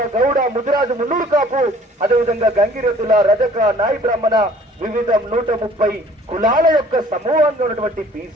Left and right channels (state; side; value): normal; both; correlation 0.54